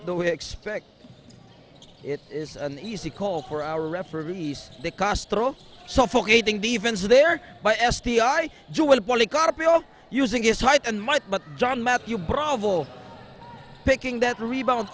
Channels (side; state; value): both; identical; correlation 1.00